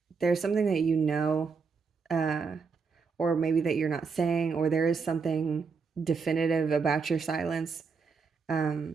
There's something that you know, or maybe that you're not saying, or there is something definitive about your silence.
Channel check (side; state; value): left; quieter; 5.2 dB